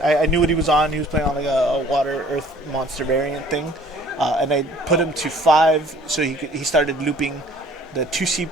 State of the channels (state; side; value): normal; both; correlation 0.54